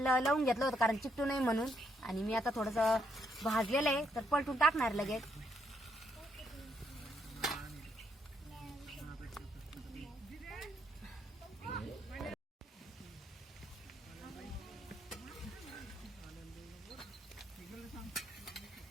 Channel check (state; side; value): normal; both; correlation 0.75